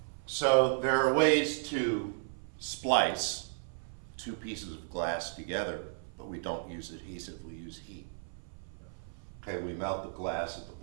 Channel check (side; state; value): left; silent; 55 dB below the other